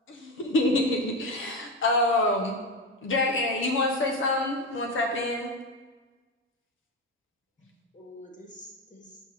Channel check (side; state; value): both; normal; correlation 0.17